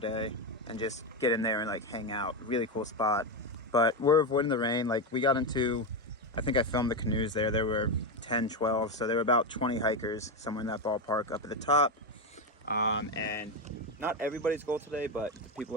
and just get in there and like hang out. Really cool spot. But we're avoiding the rain. Like we got into, I think I filmed the canoes there. There were 10, 12. So there were about 20 hikers somewhere in that ballpark up at the top. And not everybody's goal today, but the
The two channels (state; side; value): normal; both; correlation 0.11